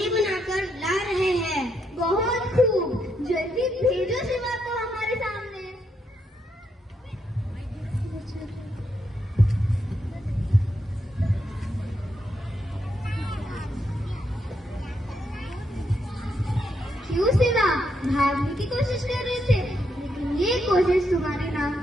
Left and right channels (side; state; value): both; normal; correlation 0.79